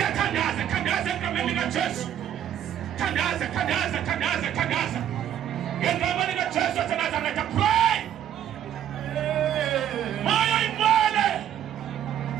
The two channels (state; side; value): quieter; left; 10.4 dB